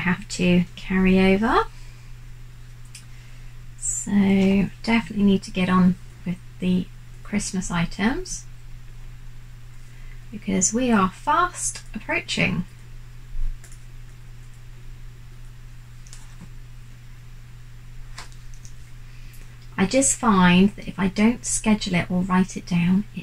to carry over. So definitely need to get on with the Christmas items because we are fast approaching. I just find that if I don't schedule it or write it down,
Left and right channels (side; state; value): both; identical; correlation 1.00